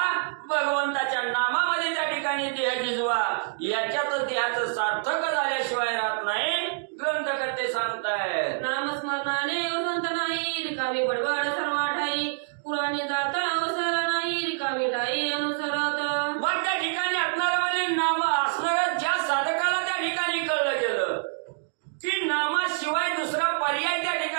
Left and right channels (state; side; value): silent; left; digital silence